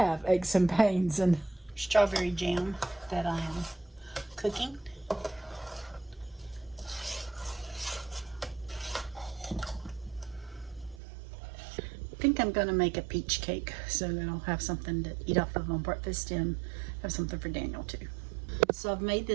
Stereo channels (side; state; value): left; drops out; at 11.0 s